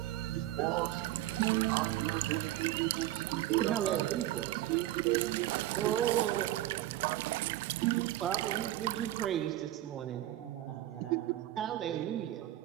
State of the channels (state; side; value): quieter; left; 14.9 dB